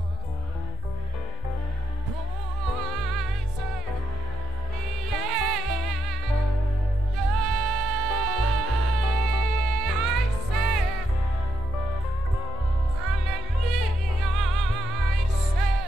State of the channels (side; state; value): both; normal; correlation 0.81